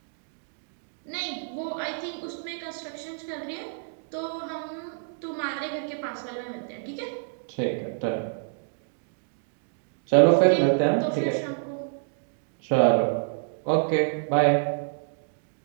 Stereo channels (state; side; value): silent; left; digital silence